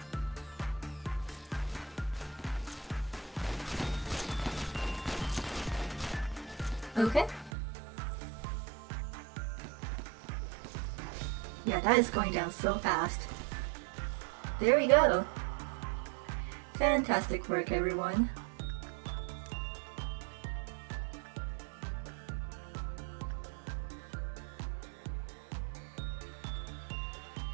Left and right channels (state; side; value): drops out; left; at 7.5 s